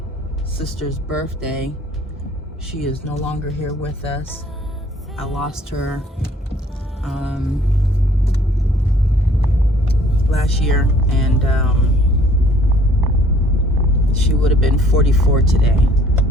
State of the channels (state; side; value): normal; both; correlation 0.58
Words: sister's birthday. She is no longer here with us. I lost her last year, and she would have been 44 today.